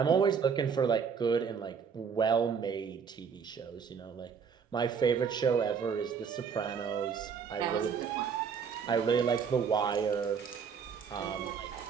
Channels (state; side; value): quieter; left; 6.4 dB